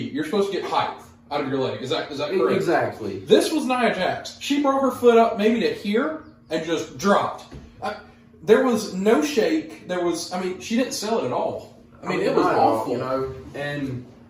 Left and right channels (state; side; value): identical; both; correlation 1.00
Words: you're supposed to get height out of your leg. Is that correct? Exactly. This was Nia Jax. She brought her foot up maybe to here and just dropped. There was no shake. She didn't sell it at all. It was awful. And